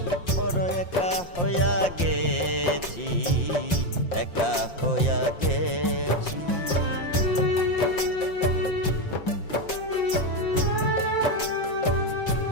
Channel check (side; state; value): right; late; 5.7 ms